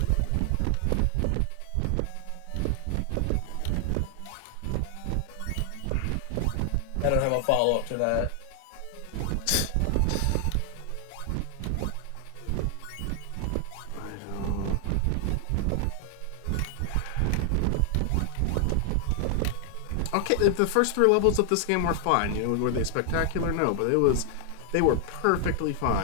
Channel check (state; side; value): different; both; correlation 0.00